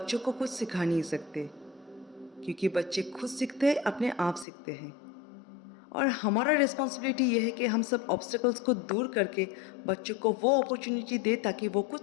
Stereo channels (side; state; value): right; drops out; at 4.5 s